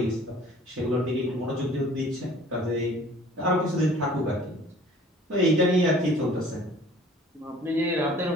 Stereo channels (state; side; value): normal; both; correlation 0.51